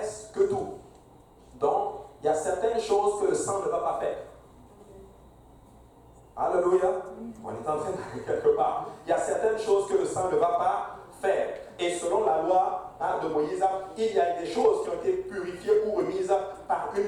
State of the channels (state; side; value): identical; both; correlation 1.00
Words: tout. Donc, il y a certaines choses que le sang ne va pas faire. Alléluia. On est en train d'aller quelque part. Il y a certaines choses que le sang ne va pas faire. Et selon la loi de Moïse, il y a des choses qui ont été purifiées ou remises par une